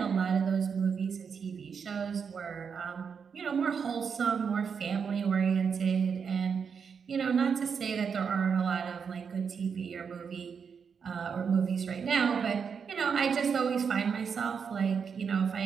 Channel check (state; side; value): quieter; left; 6.4 dB